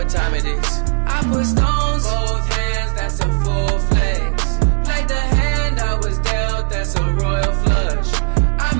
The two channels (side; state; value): left; silent; 61 dB below the other